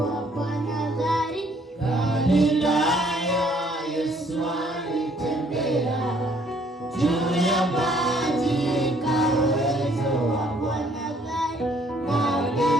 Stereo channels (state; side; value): normal; both; correlation 0.63